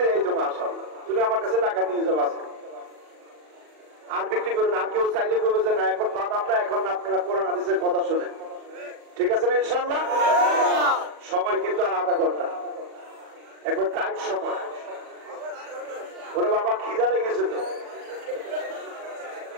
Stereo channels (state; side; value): late; left; 39 ms